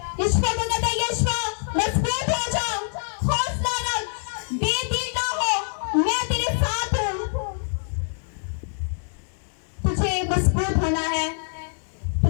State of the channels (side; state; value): right; silent; digital silence